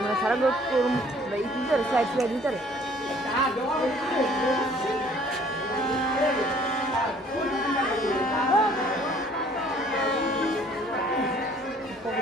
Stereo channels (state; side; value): normal; both; correlation 0.57